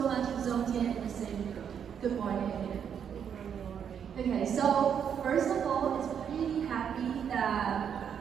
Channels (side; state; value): left; quieter; 8.0 dB